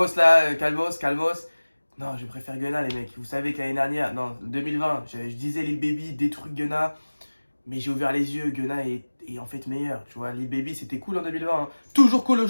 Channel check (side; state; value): both; inverted; correlation -1.00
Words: là, calmos. Non, je préfère Gunna, les mecs. Vous savez que l'année dernière, non, 2020, je disais Lil Baby, des trucs Gunna. Mais j'ai ouvert les yeux, Gunna est en fait meilleur. Tu vois, Lil Baby, c'était cool en 2020. Hein. Toujours cool